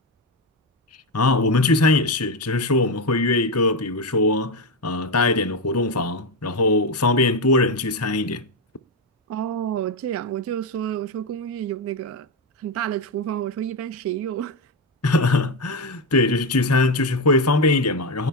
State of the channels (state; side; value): normal; both; correlation 0.11